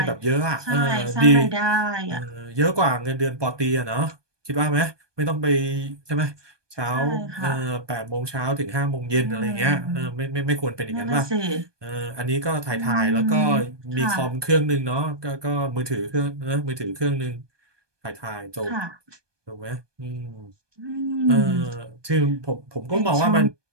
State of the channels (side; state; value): left; late; 1.2 ms